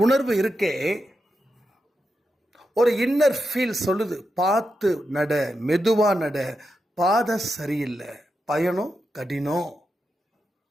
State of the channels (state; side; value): normal; both; correlation 0.87